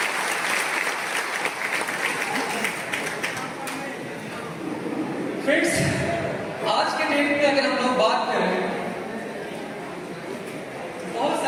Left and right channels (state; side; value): identical; both; correlation 1.00